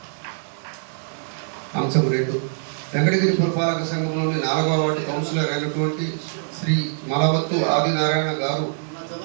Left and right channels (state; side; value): silent; left; 63 dB below the other